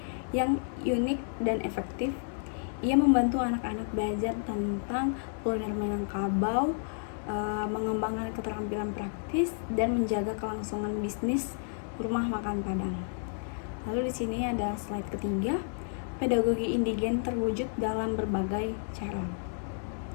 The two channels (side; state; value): right; silent; 57 dB below the other